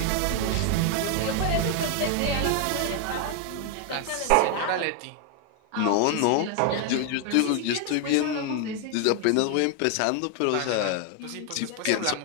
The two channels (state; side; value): different; both; correlation 0.01